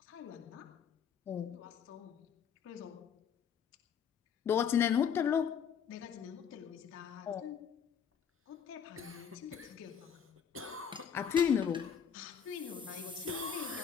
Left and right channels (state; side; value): quieter; right; 7.7 dB